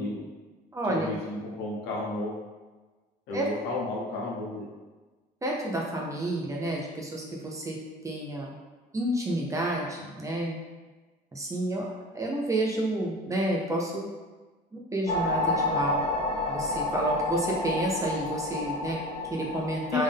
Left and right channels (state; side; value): normal; both; correlation 0.39